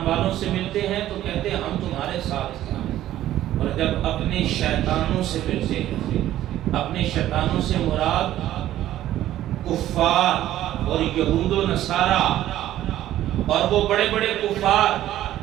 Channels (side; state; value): left; quieter; 13.3 dB